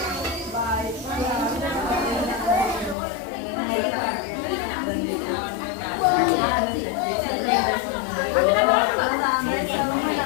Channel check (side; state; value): right; drops out; at 3.0 s